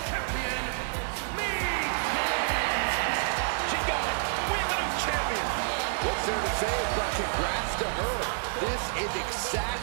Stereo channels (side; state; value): left; silent; digital silence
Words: Champion, Mi-Chin. She got it. We have a new champion. What's there to say but congrats to her? This is